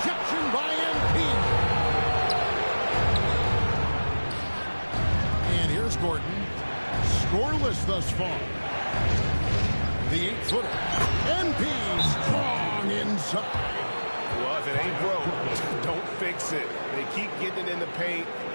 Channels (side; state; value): both; inverted; correlation -1.00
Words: by MP. And here's Gordon. Scoreless thus far. The 8-footer. MP strong inside. Well, if it ain't broke, don't fix it. They keep getting it in the paint